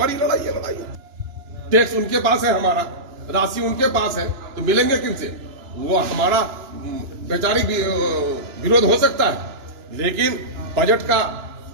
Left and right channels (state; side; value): late; left; 2.9 ms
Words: लड़ाई है, लड़ाई है। टैक्स उनके पास है, हमारा राशि उनके पास है, तो मिलेंगे किनसे? वो हमारा वैचारिक विरोध हो सकता है लेकिन बजट का